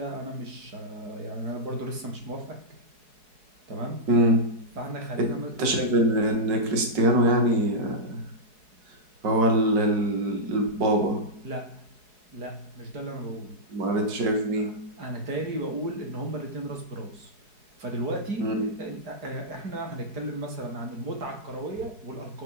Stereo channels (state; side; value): late; left; 4.7 ms